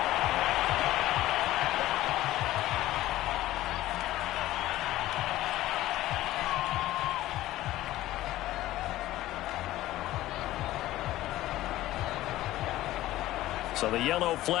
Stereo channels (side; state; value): right; quieter; 15.6 dB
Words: So the yellow